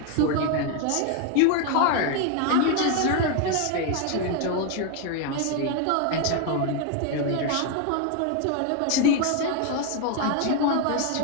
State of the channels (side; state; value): both; different; correlation 0.01